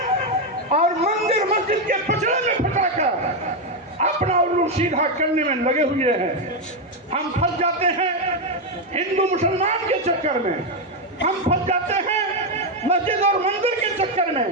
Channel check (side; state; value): both; normal; correlation 0.05